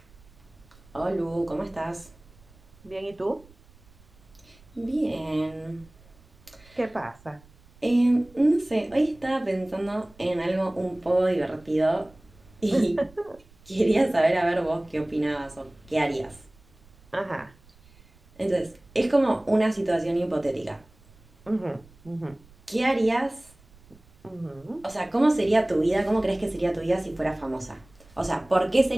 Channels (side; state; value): right; noise; rumble, 27 dB below the sound